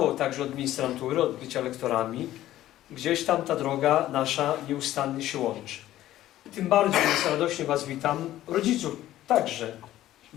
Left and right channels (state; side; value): quieter; right; 13.9 dB